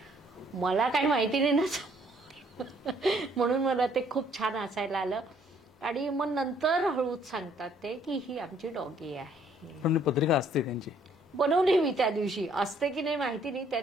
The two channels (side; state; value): both; normal; correlation 0.63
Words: मला काही माहिती नाही ना म्हणून मला ते खूप छान हसायला आलं. आणि मग नंतर हळूच सांगतात ते की ही आमची डॉगी आहे. पण पत्रिका असते त्यांची. बनवली मी त्या दिवशी, असते की नाही माहिती नाही, त्या